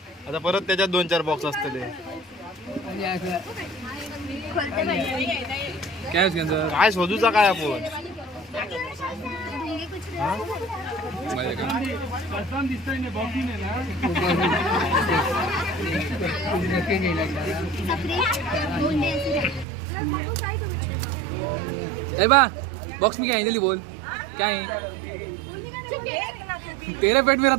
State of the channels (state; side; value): drops out; left; at 19.7 s